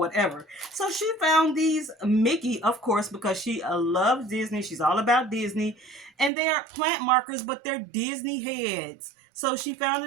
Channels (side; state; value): left; drops out; at 6.3 s